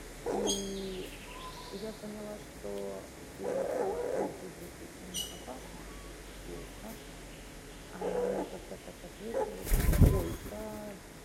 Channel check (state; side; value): identical; both; correlation 1.00